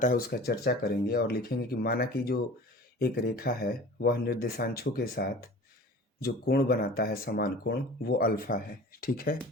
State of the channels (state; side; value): normal; both; correlation 0.41